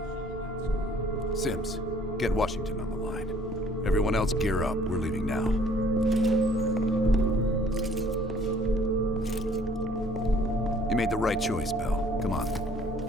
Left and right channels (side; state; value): both; normal; correlation 0.58